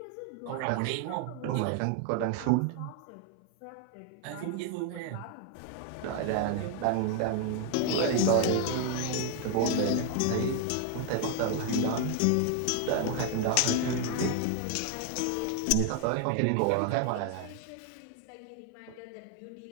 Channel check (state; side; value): different; both; correlation 0.01